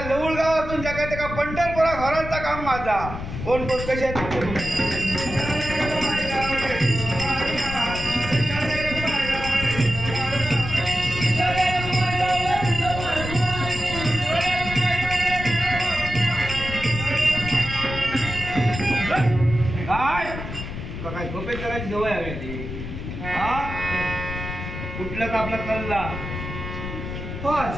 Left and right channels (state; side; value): noise; left; rumble, 7 dB below the sound